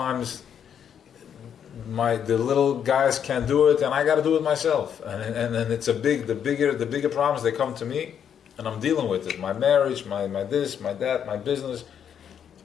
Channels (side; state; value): right; quieter; 8.5 dB